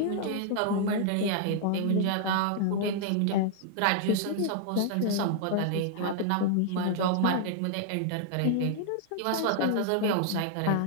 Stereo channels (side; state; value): both; different; correlation -0.01